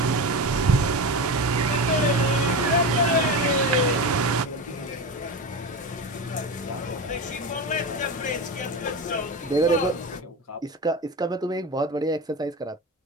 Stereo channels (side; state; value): both; normal; correlation 0.22